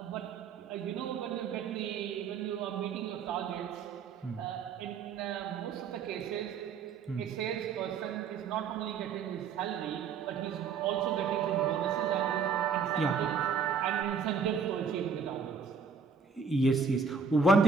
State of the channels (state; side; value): quieter; left; 5.6 dB